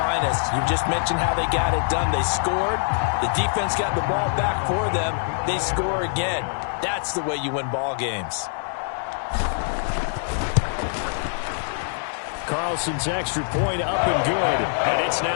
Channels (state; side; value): silent; right; digital silence